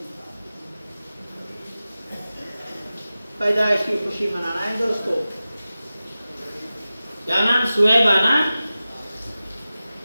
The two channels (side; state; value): both; inverted; correlation -0.95